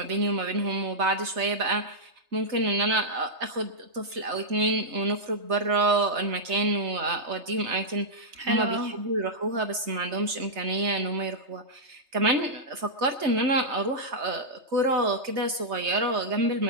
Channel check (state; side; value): late; left; 3.3 ms